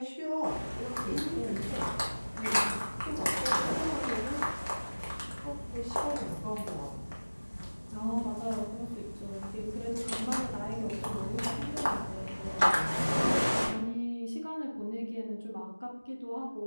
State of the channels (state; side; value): inverted; both; correlation -1.00